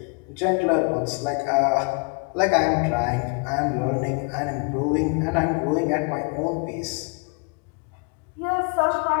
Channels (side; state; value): right; quieter; 35.5 dB